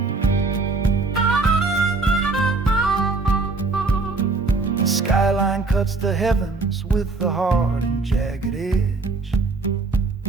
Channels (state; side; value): quieter; left; 3.8 dB